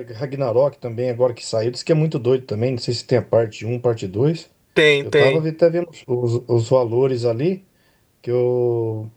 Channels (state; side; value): identical; both; correlation 1.00